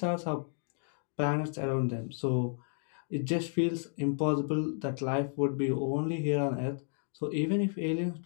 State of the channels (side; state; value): right; silent; 56 dB below the other